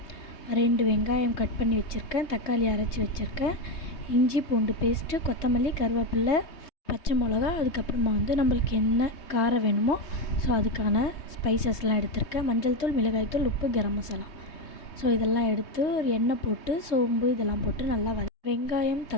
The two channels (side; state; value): right; late; 3.2 ms